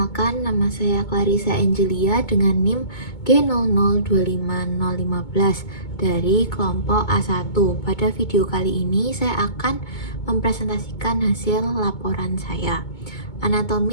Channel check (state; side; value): late; right; 2.2 ms